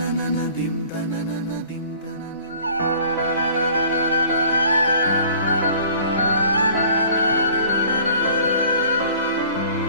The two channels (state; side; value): inverted; both; correlation -0.50